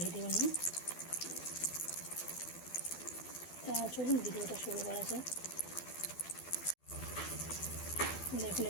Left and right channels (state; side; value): late; right; 12 ms